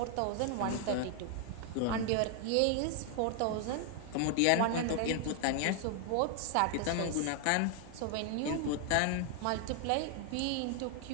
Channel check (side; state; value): both; different; correlation 0.00